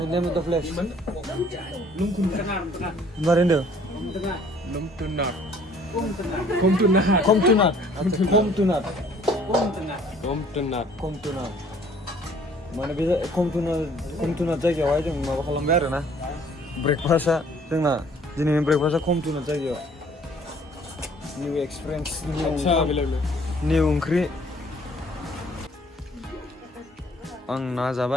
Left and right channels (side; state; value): both; normal; correlation 0.58